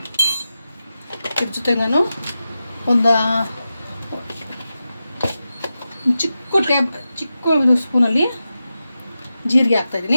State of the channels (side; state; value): both; inverted; correlation -0.92